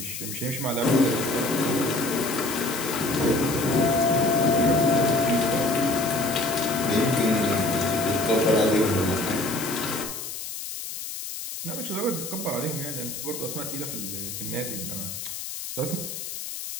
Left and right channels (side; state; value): left; noise; hiss, 7 dB below the sound